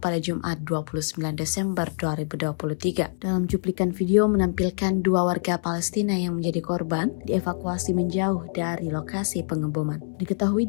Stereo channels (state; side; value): silent; right; 62 dB below the other